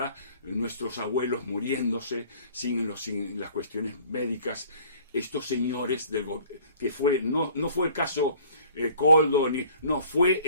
nuestros abuelos muriéndose sin las cuestiones médicas, estos señores que fue no fue el caso Koldo, no fue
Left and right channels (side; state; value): both; inverted; correlation -0.52